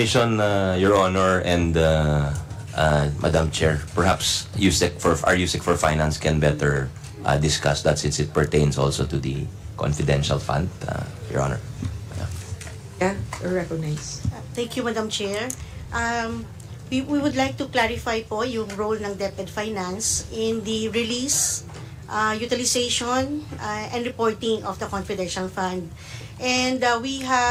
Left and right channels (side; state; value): both; identical; correlation 1.00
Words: Your Honor, and Madam Chair, perhaps our USEC for Finance can better discuss that since it pertains also to the confidential fund, Your Honor. Yeah, recognize. Thank you, Madam Chair. We would like to clarify po yung role ng DepEd Finance in the release, utilization, and reporting of the confidential fund. And we